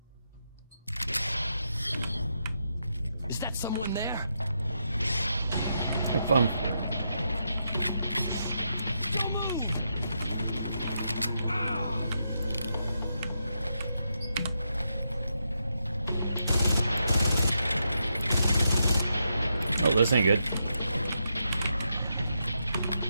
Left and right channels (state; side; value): inverted; both; correlation -0.83